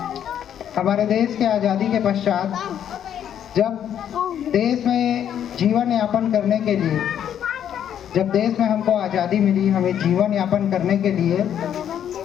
हमारे देश के आज़ादी के पश्चात जब देश में जीवन यापन करने के लिए, जब देश में हमको आज़ादी मिली, हमें जीवन यापन करने के लिए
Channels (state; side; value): quieter; right; 9.6 dB